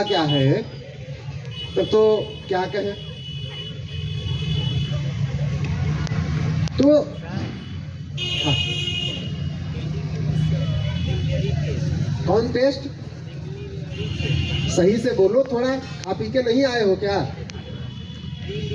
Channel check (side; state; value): both; identical; correlation 1.00